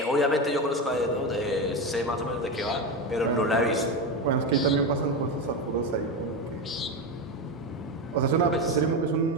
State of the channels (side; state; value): both; normal; correlation 0.16